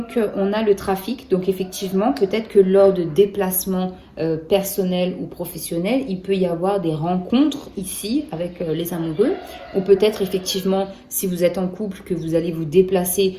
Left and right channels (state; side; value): identical; both; correlation 1.00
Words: on a le trafic. Donc effectivement, peut-être que lors de déplacements personnels ou professionnels, il peut y avoir des rencontres ici avec les amoureux. Ou peut-être effectivement, si vous êtes en couple, que vous allez vous déplacer